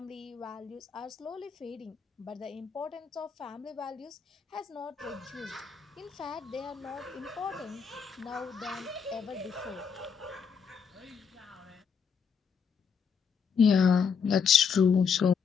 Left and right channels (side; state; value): right; quieter; 6.4 dB